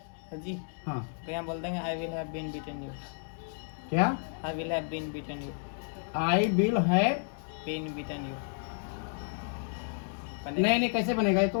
सर जी हाँ, तो यहाँ बोल देंगे I will have been beaten you, क्या I will have been beaten you, I will have, been beaten you. नहीं नहीं कैसे बनेगा, ये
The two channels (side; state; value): right; silent; 57 dB below the other